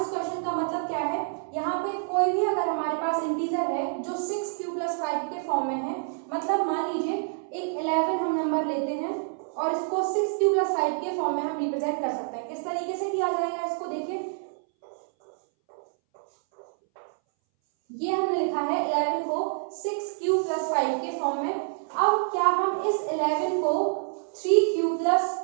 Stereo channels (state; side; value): silent; left; 60 dB below the other